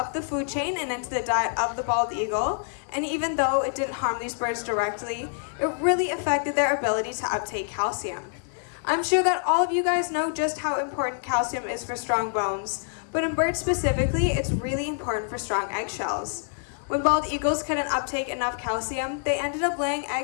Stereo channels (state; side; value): silent; right; 61 dB below the other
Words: the food chain and into the diet of the bald eagle, and even though it didn't harm these birds directly, it really affected their ability to uptake calcium. I'm sure that all of you guys know just how important calcium is for strong bones, but in birds specifically, it's really important for strong eggshells. When bald eagles couldn't uptake enough calcium, they ended up laying